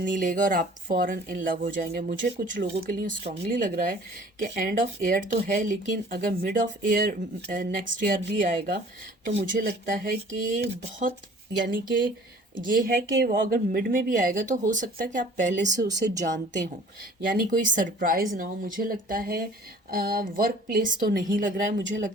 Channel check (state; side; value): normal; both; correlation 0.50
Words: लेगा और आप फॉरन इन लव हो जाएंगे। मुझे कुछ लोगों के लिए स्ट्रांगली लग रहा है कि एंड ऑफ ईयर तो है, लेकिन अगर mid of year next year भी आएगा तो मुझे लगता है कि बहुत, यानी कि ये है कि वो अगर मिड में भी आएगा तो हो सकता है कि आप पहले से उसे जानते हो, यानी कोई सरप्राइज ना हो। मुझे लगता है वर्क प्लेस तो नहीं लग रहा है, मुझे